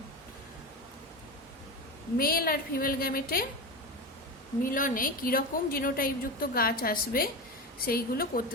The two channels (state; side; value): normal; both; correlation 0.22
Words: মেল আর ফিমেল গ্যামেটে মিলনে কিরকম জিনোটাইপযুক্ত গাছ আসবে সেইগুলো